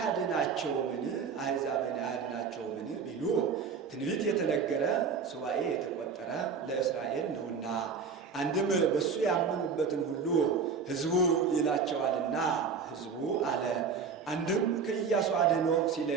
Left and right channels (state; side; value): quieter; left; 5.7 dB